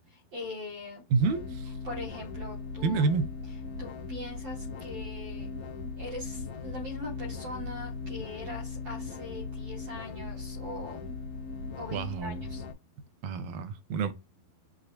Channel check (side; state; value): left; late; 12 ms